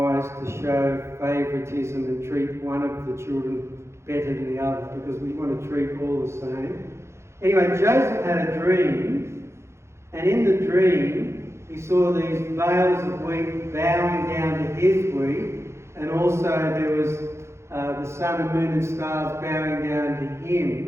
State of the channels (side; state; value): left; late; 0.13 ms